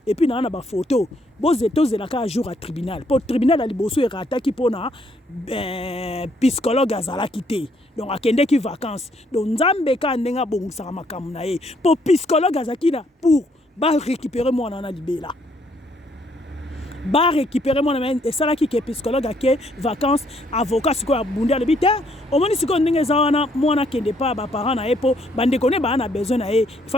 et puis na ba photo. Bozo tozela ka jour à tribunal. Pour tribunal ali boso e rataki pona psychologue azala kité. Donc akende ki vacances. Donc nzambe ka ndenga bongisa makamu na ye. Pour psychologue azakina pour ba récupérer mwana na libela. Ba récupérer mon ami et ça là qui est psychologue à qui vacances avocat ce quoi bunda le bité au moins si qu'on n'est pas moi na kende pas ba parents na epo bande connaît ba na besoin na il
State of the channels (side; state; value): both; normal; correlation 0.69